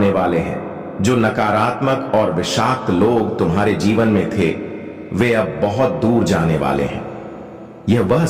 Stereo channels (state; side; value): identical; both; correlation 1.00